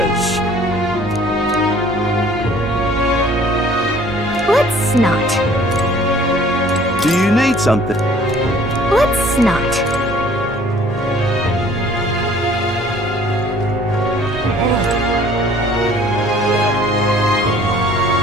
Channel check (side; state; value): both; normal; correlation 0.54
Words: Let's not. Do you need something? Let's not.